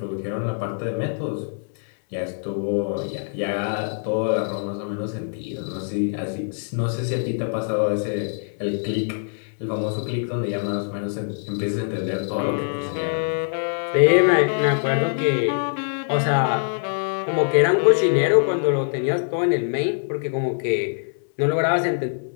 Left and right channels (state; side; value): silent; right; digital silence